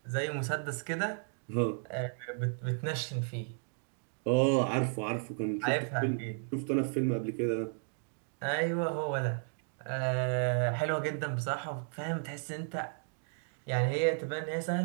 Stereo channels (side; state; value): left; silent; 55 dB below the other